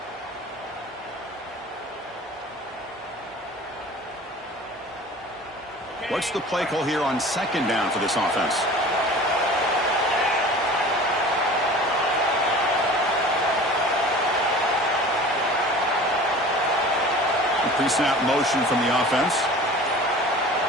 What's the play call here on 2nd down for this offense? Pre-snap motion from the offense.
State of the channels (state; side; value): normal; both; correlation 0.41